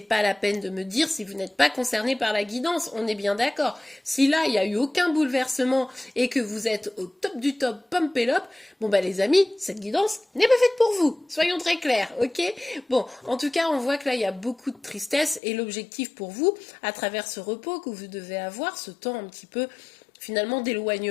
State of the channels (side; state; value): right; drops out; at 15.4 s